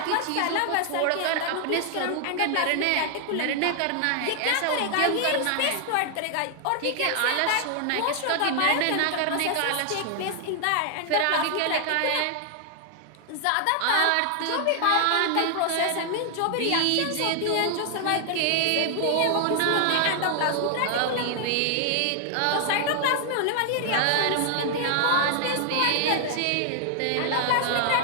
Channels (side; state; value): both; different; correlation 0.00